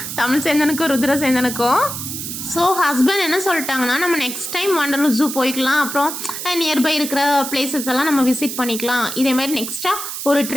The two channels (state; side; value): noise; right; hiss, 6 dB below the sound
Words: தமிழ் சேந்தனுக்கும் ருத்ர சேந்தனுக்கும். ஸோ ஹஸ்பண்ட் என்ன சொல்லிட்டாங்கன்னா, நம்ம நெக்ஸ்ட் டைம் வண்டலூர் ஜூ போய்க்கலாம், அப்புறம் நியர்பை இருக்கிற பிளேசஸ் எல்லாம் நம்ம விசிட் பண்ணிக்கலாம், இதேமாதிரி நெக்ஸ்ட்டாக ஒரு